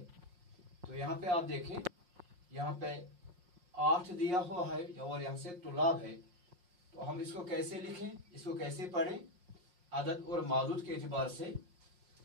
तो यहाँ पे आप देखें, यहाँ पे 8 दिया हुआ है और यहाँ से तुलाब है। तो हम इसको कैसे लिखें, इसको कैसे पढ़ें अदद और मादूद के एतबार से।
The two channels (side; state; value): left; late; 5.6 ms